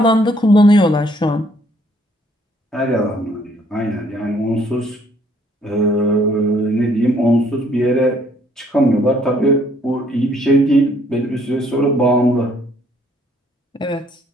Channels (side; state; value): both; normal; correlation 0.64